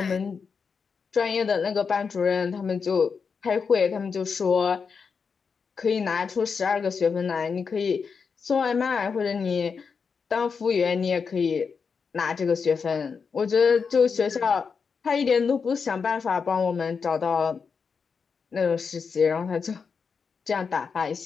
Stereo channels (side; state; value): right; quieter; 5.6 dB